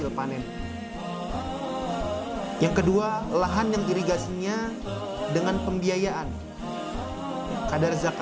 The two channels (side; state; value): both; identical; correlation 1.00